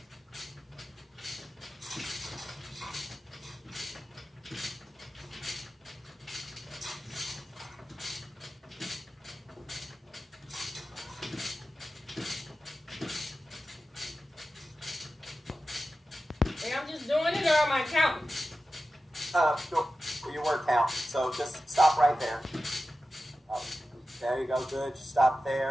I'm just doing it, or am I counting? Your word count. So just stop right there. There you go. Good. Just stop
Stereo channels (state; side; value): normal; both; correlation 0.94